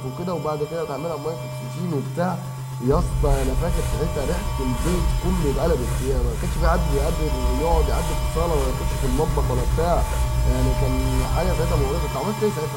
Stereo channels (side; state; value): both; identical; correlation 1.00